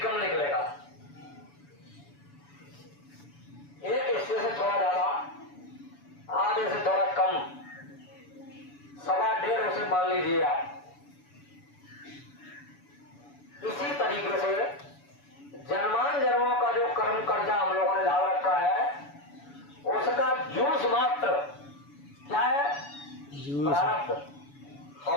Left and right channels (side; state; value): right; late; 7.0 ms